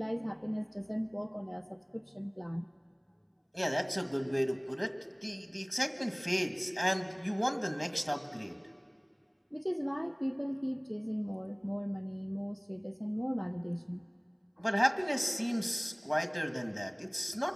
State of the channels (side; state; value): both; identical; correlation 1.00